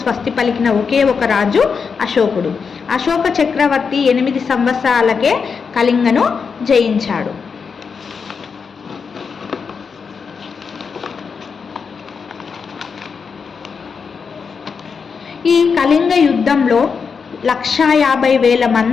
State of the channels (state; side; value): quieter; right; 5.7 dB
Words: స్వస్తి పలికిన ఒకే ఒక రాజు అశోకుడు. అశోక చక్రవర్తి 8 సంవత్సరాలకే కళింగను జయించాడు. ఈ కళింగ యుద్ధంలో 150,000